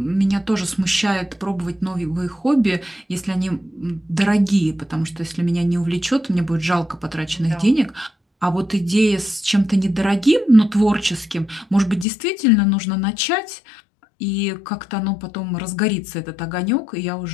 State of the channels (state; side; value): drops out; right; at 12.1 s